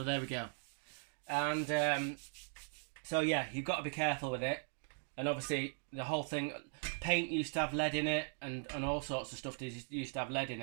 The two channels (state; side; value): silent; left; 52 dB below the other